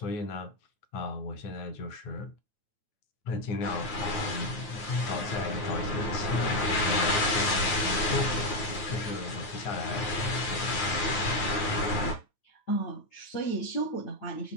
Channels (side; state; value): right; late; 9.1 ms